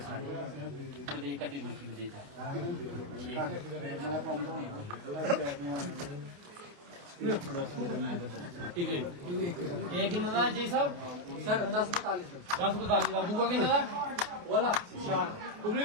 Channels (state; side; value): late; left; 28 ms